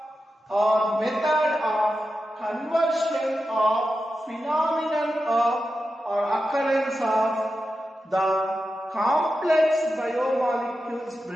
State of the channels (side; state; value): both; normal; correlation 0.90